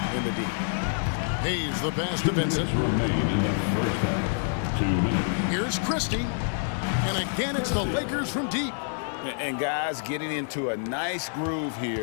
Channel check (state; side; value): silent; right; digital silence